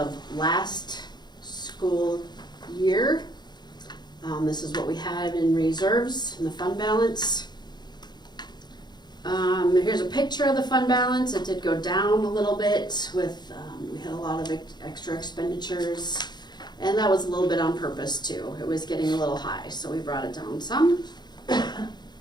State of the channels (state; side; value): late; right; 0.21 ms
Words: last school year. This is what we had in reserves in the fund balance. Here's a picture of the fund balance. It did go down a little bit with, we had a lot of extra expenditures, and that was a little bit on purpose too. It was getting a little high, so we brought it down some.